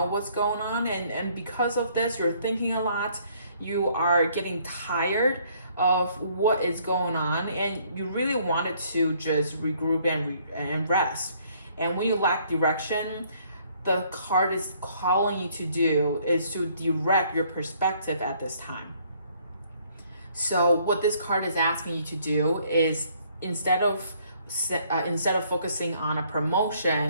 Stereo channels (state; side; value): inverted; both; correlation -0.64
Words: what's going on, and because of this you're thinking a lot, you are getting tired of what is going on, and you really wanted to just regroup and rest. And when you lack direction, the card is calling you to do is to direct your perspective at this time. So what this card is asking you to do is instead of focusing on a